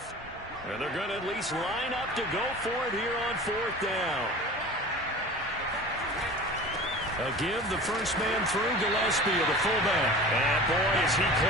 And they're going to at least line up to go for it here on 4th down. A give, the first man through, Gillespie, the fullback. And boy, is he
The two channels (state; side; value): normal; both; correlation 0.38